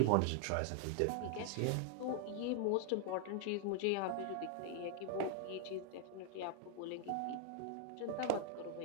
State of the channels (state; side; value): different; both; correlation 0.00